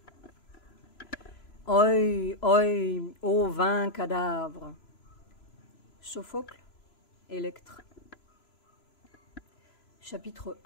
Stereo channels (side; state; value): right; late; 3.0 ms